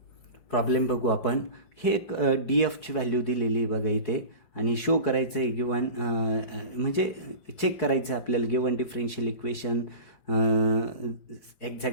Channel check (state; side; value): late; right; 5.2 ms